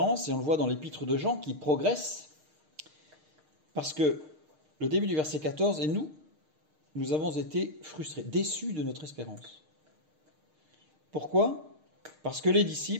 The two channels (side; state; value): left; late; 6.5 ms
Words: et on le voit dans l'épître de Jean, qui progresse, parce que le début du verset 14, et nous avons été frustrés, déçus de notre espérance. Pourquoi ? Parce que les